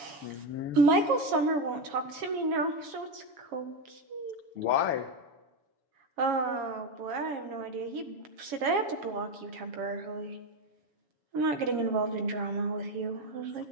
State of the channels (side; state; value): left; late; 7.2 ms